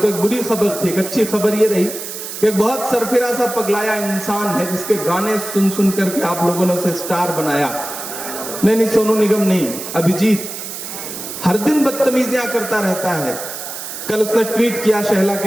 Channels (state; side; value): noise; right; hiss, 8 dB below the sound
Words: एक बुरी खबर थी। एक अच्छी खबर ये रही कि एक बहुत सरफिरा सा पगलाया इंसान है जिसके गाने सुन सुन करके आप लोगों ने उसे स्टार बनाया। नहीं, सोनू निगम नहीं, अभिजीत हर दिन बदतमीजियां करता रहता है। कल उसने ट्वीट किया शहला